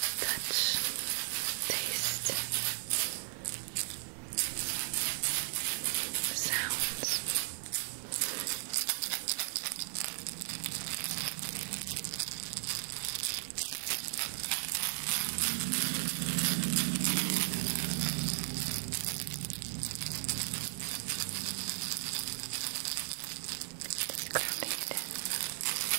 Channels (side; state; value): left; silent; 54 dB below the other